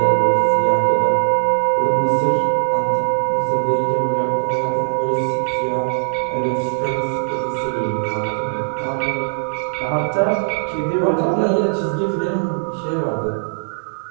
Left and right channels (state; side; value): silent; left; digital silence